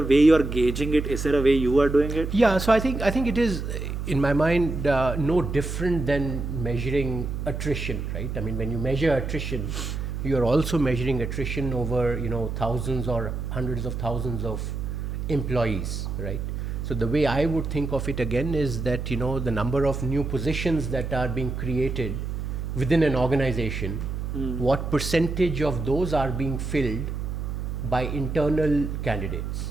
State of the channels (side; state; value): right; noise; hum, 4 dB below the sound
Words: way you are gauging it? Is there a way you are doing it? Yeah, so I think it is, in my mind, no different than measuring attrition, right? I mean, when you measure attrition, you are also measuring attrition over thousands or hundreds of thousands of employees, right? So the way I would think of it again is that the number of new positions that are being created within an organization, what percentage of those are being filled by internal